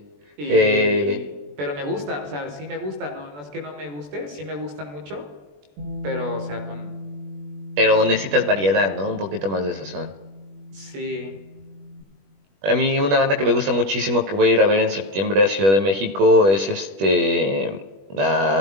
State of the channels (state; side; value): late; left; 21 ms